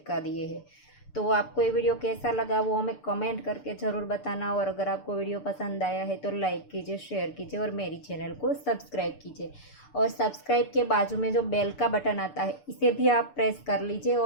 दिए हैं। तो आपको ये वीडियो कैसा लगा वो हमें कमेंट करके ज़रूर बताना। और अगर आपको वीडियो पसंद आया है तो लाइक कीजिए, शेयर कीजिए और मेरी चैनल को सब्सक्राइब कीजिए। और सब्सक्राइब के बाजू में जो बेल का बटन आता है इसे भी आप प्रेस कर लीजिए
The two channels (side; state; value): right; late; 6.8 ms